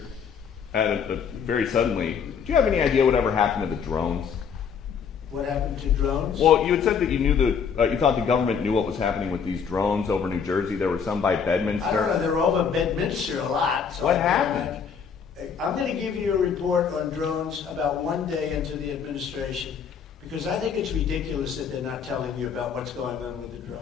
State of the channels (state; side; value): quieter; right; 6.8 dB